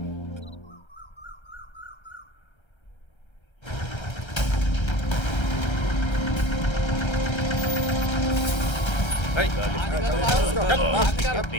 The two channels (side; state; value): right; late; 1.3 ms